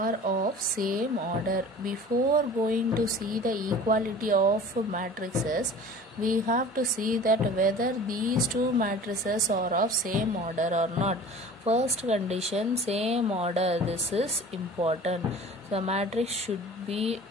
of same order. Before going to see the equality of matrices, we have to see that whether these two matrices are of same order or not. First condition, same order. This is important. The matrix should be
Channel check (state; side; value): normal; both; correlation 0.42